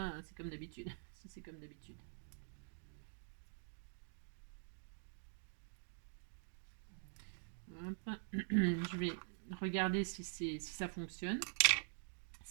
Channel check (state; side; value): silent; left; digital silence